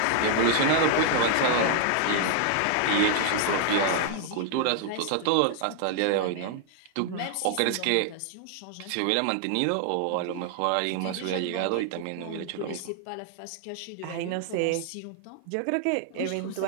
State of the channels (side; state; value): both; different; correlation 0.00